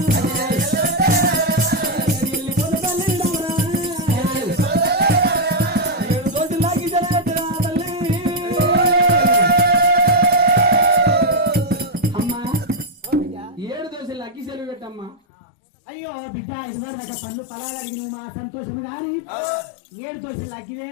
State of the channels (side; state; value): right; drops out; at 15.2 s